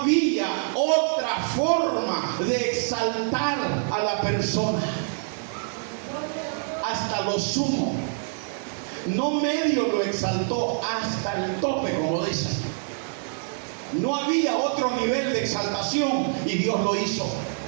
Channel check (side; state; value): left; silent; digital silence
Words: otra forma de exaltar a la persona. Hasta lo sumo. No medio lo exaltó, hasta el tope, como dicen. No había otro nivel de exaltación y Dios lo hizo.